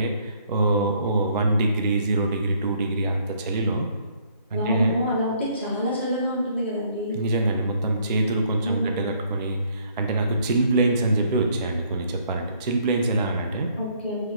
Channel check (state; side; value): inverted; both; correlation -0.65